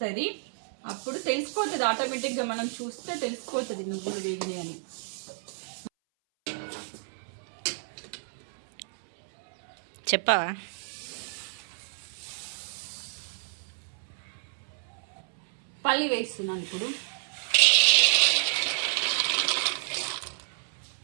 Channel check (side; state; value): left; silent; 58 dB below the other